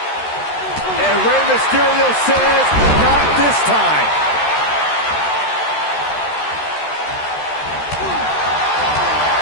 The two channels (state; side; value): late; right; 13 ms